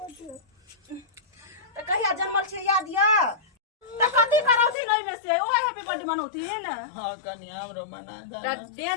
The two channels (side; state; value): right; drops out; at 4.8 s